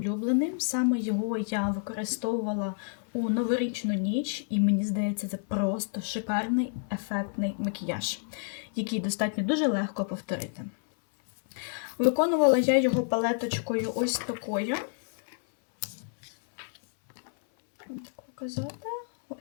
Саме його я використовувала у новорічну ніч. І мені здається, це просто шикарний, ефектний макіяж, який достатньо дуже легко повторити. Виконувала я його палеточкою ось такою. Так показати.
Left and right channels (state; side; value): silent; right; 58 dB below the other